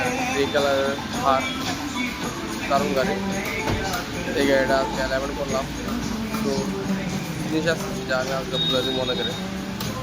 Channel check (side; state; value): both; identical; correlation 1.00